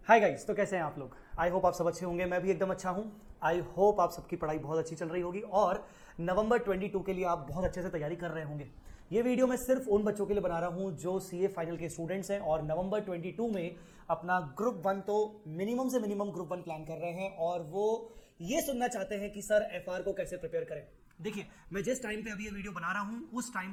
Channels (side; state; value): both; identical; correlation 1.00